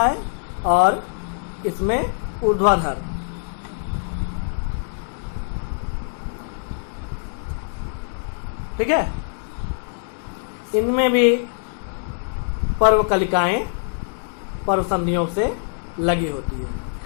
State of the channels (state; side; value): silent; right; digital silence